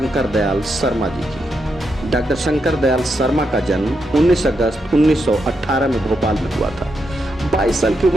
दयाल शर्मा जी की। डॉक्टर शंकर दयाल शर्मा का जन्म 19 अगस्त 1918 में भोपाल में हुआ था। 22 साल की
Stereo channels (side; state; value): both; normal; correlation 0.83